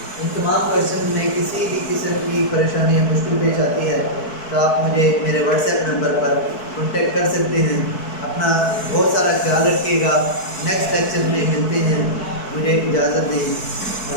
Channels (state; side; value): late; right; 4.6 ms